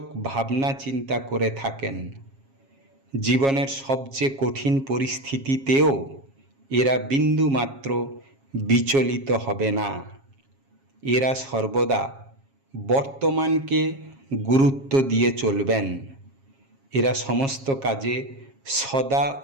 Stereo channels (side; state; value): left; late; 7.4 ms